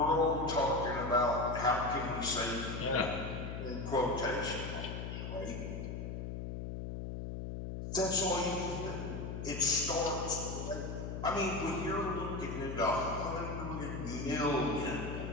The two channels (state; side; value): noise; left; hum, 5 dB below the sound